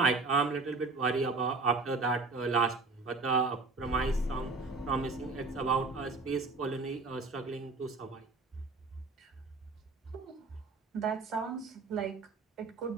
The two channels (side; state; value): left; quieter; 3.7 dB